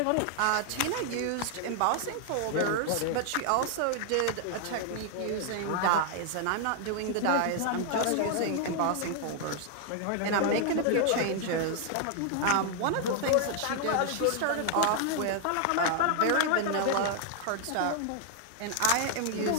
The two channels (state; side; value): different; both; correlation 0.00